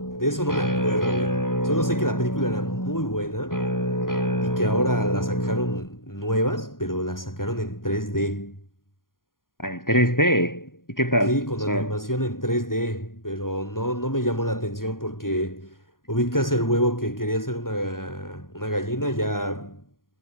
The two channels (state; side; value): late; right; 0.91 ms